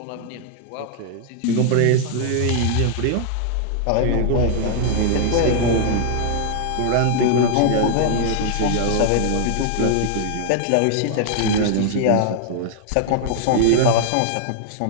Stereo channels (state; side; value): different; both; correlation -0.01